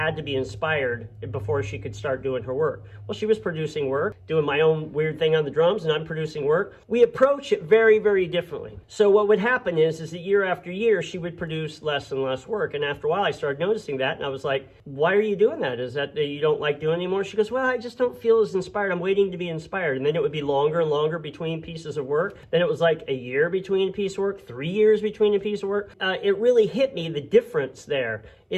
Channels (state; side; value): identical; both; correlation 1.00